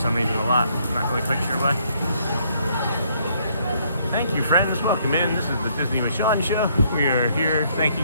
reason a lot. I'm not really quite sure why. Thank you, friends. Welcome in. This is the Disney with Sean show. We are here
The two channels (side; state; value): both; inverted; correlation -0.69